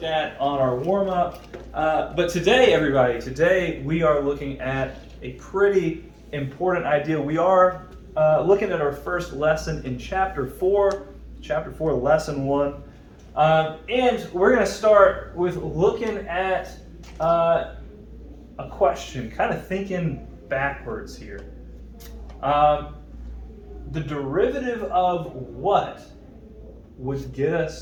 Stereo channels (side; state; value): both; identical; correlation 1.00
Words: at on our warm-up. But today, everybody, we are looking at a pretty important idea. We are looking at our first lesson in Chapter 4, Lesson 1. And we're going to start with looking at a question, kind of thinking backwards here. The derivative of what would get